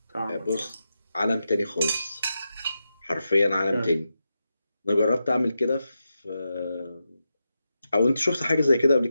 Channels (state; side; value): inverted; both; correlation -0.88